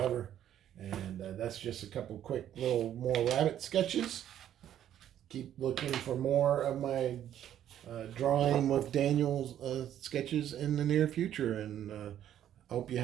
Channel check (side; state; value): left; quieter; 10.9 dB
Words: And that's just a couple quick little more rabbit sketches. Keep looking for more of my drawing with Daniel's sketches in the near future. And hope you're